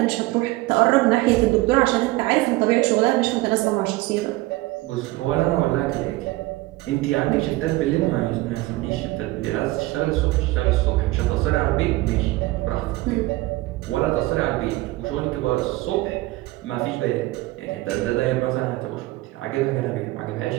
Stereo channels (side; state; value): left; quieter; 19.5 dB